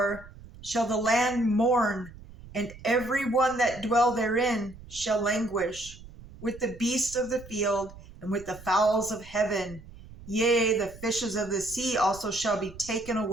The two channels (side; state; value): right; noise; rumble, 18 dB below the sound